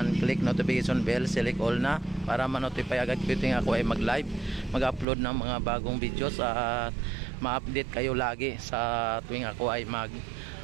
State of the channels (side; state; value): left; drops out; at 5.1 s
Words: click notification bell, select all na para ma-notify agad ko yung ako ay mag-live, mag-upload ng mga bagong videos at ma-update kayo lagi sa tuwing ako ay